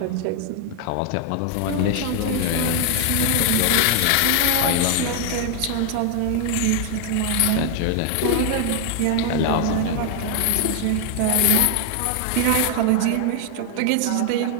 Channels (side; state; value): both; different; correlation 0.00